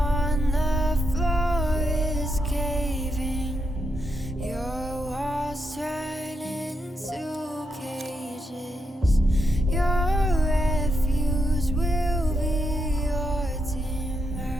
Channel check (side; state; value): both; normal; correlation 0.82